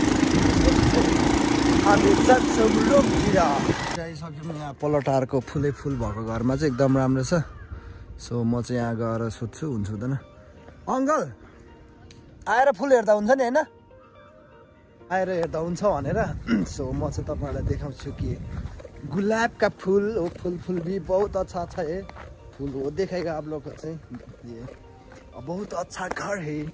हामी जान्छौँ रुमतिर आइसक्यौँ यहाँ पलटारको फुलै फुल भएको घरमा चाहिँ एकदम राम्रो छ सो म चाहिँ यहाँ गएर सोध्छु हुन्छ हुँदैन अङ्कल आएर फुल हेर्दा हुन्छ नि होइन आएर हेर्दा हुन्छ भनेर सो म चाहिँ तपाईँहरूलाई देखाउँछु कि गुलाबका फूल हो फूल भी बहुत अच्छा अच्छा है फूल हो देखेगा आप लोग को चाहिँ ये बहुत अच्छा घर है यो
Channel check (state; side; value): identical; both; correlation 1.00